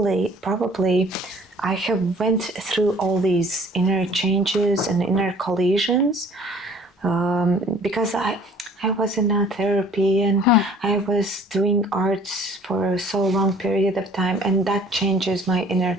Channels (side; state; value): both; normal; correlation 0.53